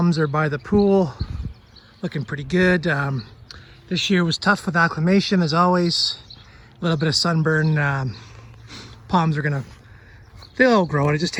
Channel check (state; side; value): identical; both; correlation 1.00